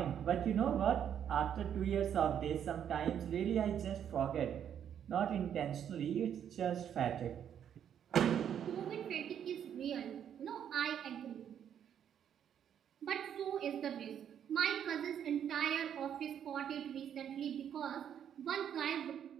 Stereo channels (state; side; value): quieter; left; 9.1 dB